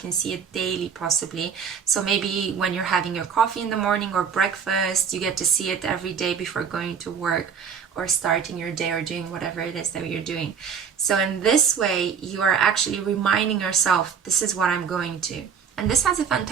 see it daily, possibly. So maybe when you're having your coffee in the morning or breakfast, you get to see it every day before going to work or starting your day or doing whatever it is that you're doing. So in this way, you are actually reminding yourself, this is what I'm going to. And this has a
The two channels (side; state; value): left; quieter; 6.9 dB